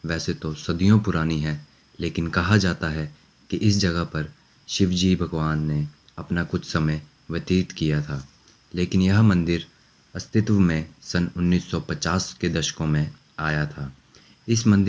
वैसे तो सदियों पुरानी है, लेकिन कहा जाता है कि इस जगह पर शिवजी भगवान ने अपना कुछ समय व्यतीत किया था। लेकिन यह मंदिर अस्तित्व में सन 1950 के दशकों में आया था। इस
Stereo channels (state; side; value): identical; both; correlation 1.00